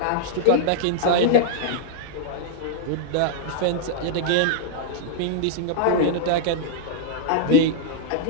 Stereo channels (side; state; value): both; different; correlation -0.01